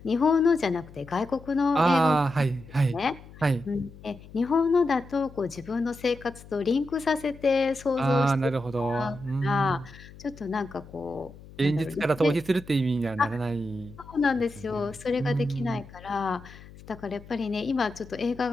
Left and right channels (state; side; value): noise; left; hum, 19 dB below the sound